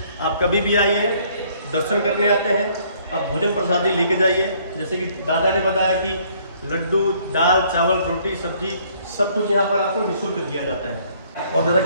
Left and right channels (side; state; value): both; inverted; correlation -0.62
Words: आप कभी भी आइए, दर्शन करने आते हैं, आप भोजन प्रसादी लेके जाइए। जैसे कि दादा ने बताया कि लड्डू, दाल, चावल, रोटी, सब्जी सब कुछ यहाँ पर आपको निःशुल्क दिया जाता है। और दादा